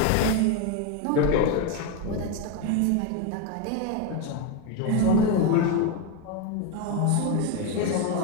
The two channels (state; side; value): different; both; correlation 0.02